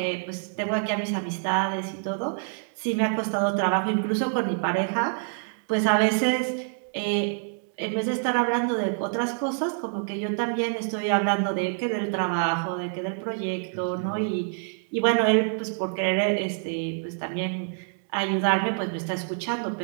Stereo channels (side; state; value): left; silent; 60 dB below the other